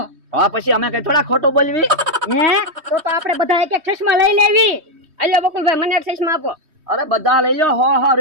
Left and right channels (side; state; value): left; late; 3.2 ms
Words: હા, પછી અમે કઈ થોડા ખોટું બોલવી? હે તો આપણે બધા એક એક ચશ્મા લઈ લેવી. આલ્યો બકુલભાઈ, મને એક ચશ્મા આપો. અરે બધા લઈ લ્યો, 100